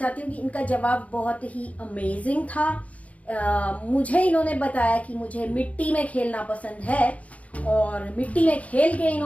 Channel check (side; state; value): right; late; 0.067 ms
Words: हूँ कि इनका जवाब बहुत ही अमेजिंग था। मुझे इन्होंने बताया कि मुझे मिट्टी में खेलना पसंद है, और मिट्टी में खेल के